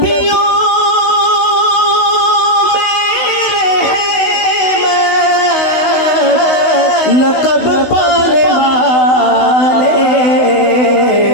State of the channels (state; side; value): late; right; 16 ms